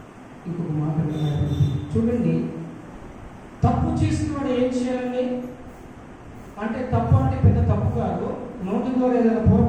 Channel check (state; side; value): identical; both; correlation 1.00